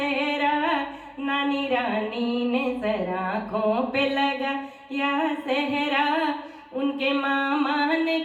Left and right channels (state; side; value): identical; both; correlation 1.00